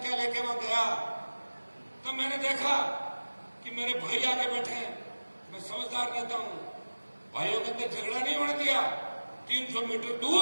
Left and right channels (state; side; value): inverted; both; correlation -1.00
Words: लेके वहां गया, तब मैंने देखा कि मेरे भाई आगे बैठे हैं। मैं समझदार रहता हूं, भाइयों के अंदर झगड़ा नहीं होने दिया। 300 मीटर